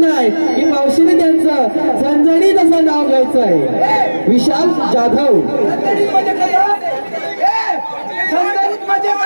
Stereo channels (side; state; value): both; inverted; correlation -1.00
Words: आहे की मावशीने त्यांचं झणझणीत असं नाव घ्यायचं आहे. विशाल जाधव.